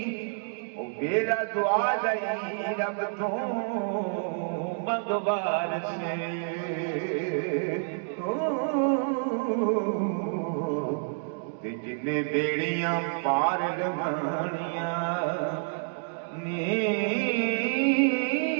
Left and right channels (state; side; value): silent; left; digital silence